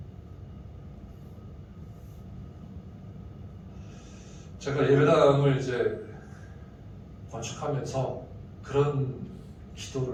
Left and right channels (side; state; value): both; identical; correlation 1.00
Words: 제가 예배당을 이제 건축하면서 그런